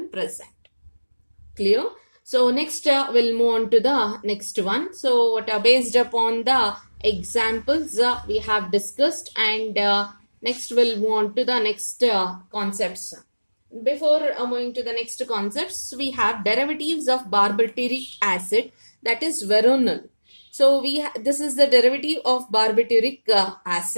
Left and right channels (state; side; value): inverted; both; correlation -1.00